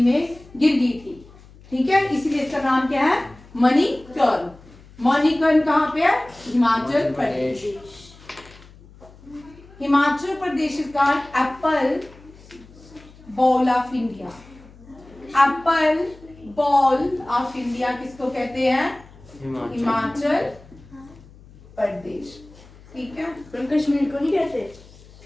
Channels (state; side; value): noise; left; hum, 23 dB below the sound